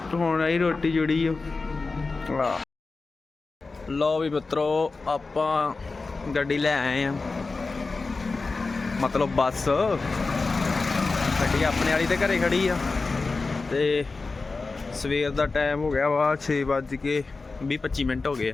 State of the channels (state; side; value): quieter; right; 3.9 dB